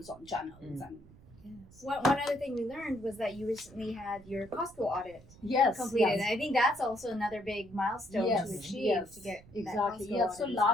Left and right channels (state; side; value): noise; right; rumble, 22 dB below the sound